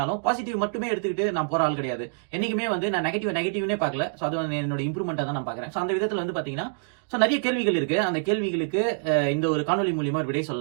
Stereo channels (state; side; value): silent; left; digital silence